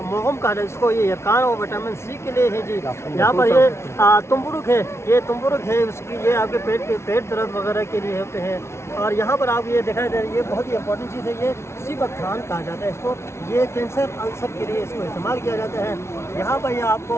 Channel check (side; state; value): right; late; 0.13 ms